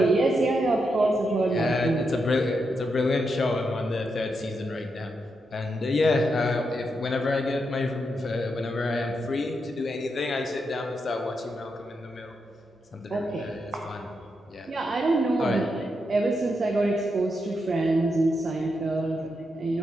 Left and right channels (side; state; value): both; normal; correlation 0.84